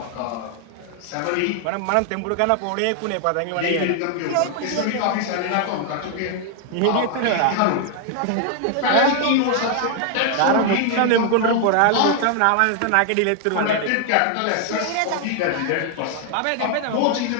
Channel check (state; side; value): different; both; correlation 0.00